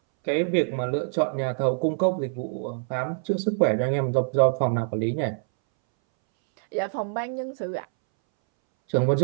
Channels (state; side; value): silent; left; 62 dB below the other